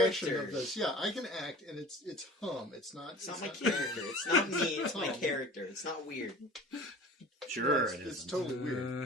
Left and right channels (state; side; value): normal; both; correlation 0.42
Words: character. Of this. Yeah, I can act, and it's Hum. It's not my character. It's not me, it's my Hum. character. It's not weird. sure, It's isn't. totally